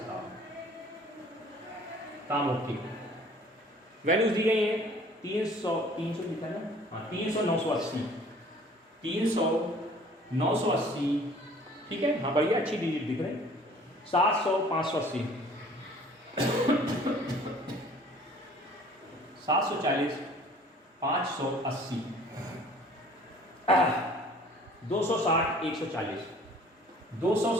काम ओके। वैल्यूज दी गई है 300 लिखा है ना, हाँ 300, 980, 300, 980, ठीक है, हाँ बढ़िया, अच्छी डिजिट दिख रहे हैं। 700, 580, 740, 580, 260, 140,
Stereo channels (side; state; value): both; normal; correlation 0.52